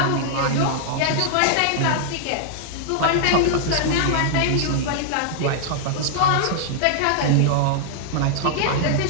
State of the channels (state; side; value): different; both; correlation -0.01